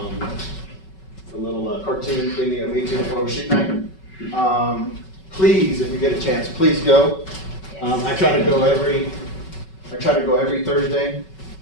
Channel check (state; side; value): late; right; 5.3 ms